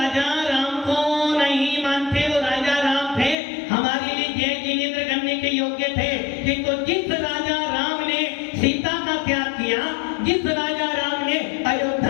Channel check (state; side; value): drops out; right; at 3.4 s